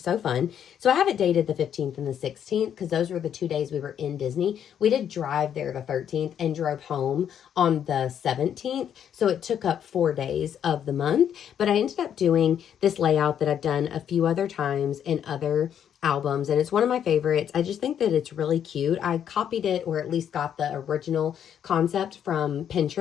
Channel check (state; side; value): quieter; right; 9.1 dB